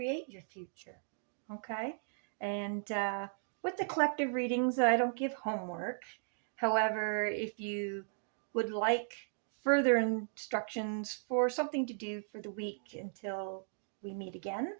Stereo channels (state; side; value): silent; left; digital silence